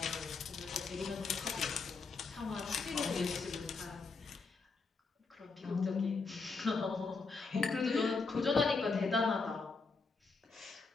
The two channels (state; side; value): quieter; right; 4.3 dB